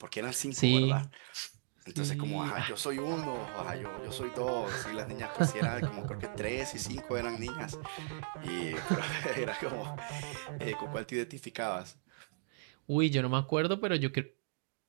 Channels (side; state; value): left; silent; digital silence